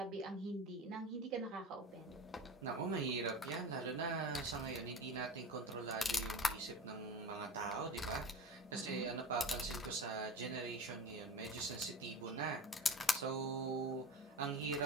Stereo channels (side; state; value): both; normal; correlation 0.33